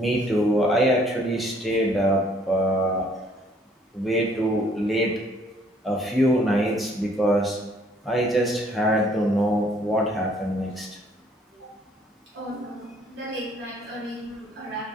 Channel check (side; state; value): both; normal; correlation 0.62